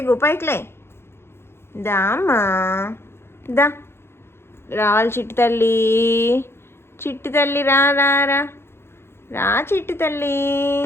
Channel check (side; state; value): right; late; 0.12 ms